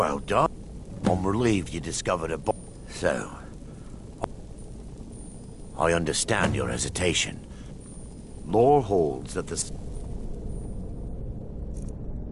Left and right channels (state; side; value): identical; both; correlation 1.00